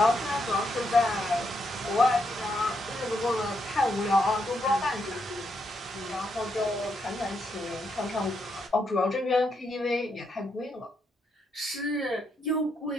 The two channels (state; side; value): normal; both; correlation 0.79